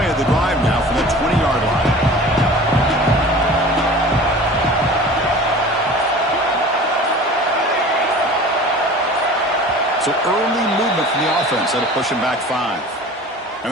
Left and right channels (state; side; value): normal; both; correlation 0.41